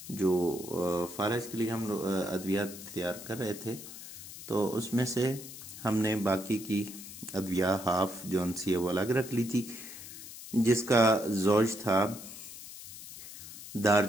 जो फालिज के लिए हम लोग अद्वियात तैयार कर रहे थे, तो उसमें से हमने बाकी की अद्विया हाफ जौन सी है वो अलग रख ली थी, जिसका ज़ौज था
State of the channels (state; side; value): noise; left; hiss, 13 dB below the sound